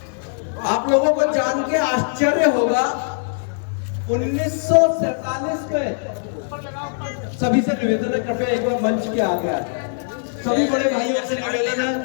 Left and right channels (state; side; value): silent; right; digital silence